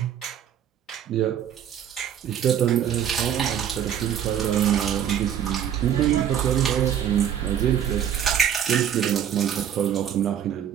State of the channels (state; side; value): quieter; left; 9.5 dB